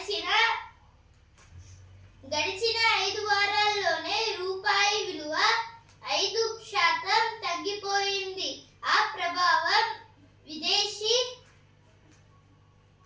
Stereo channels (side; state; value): both; identical; correlation 1.00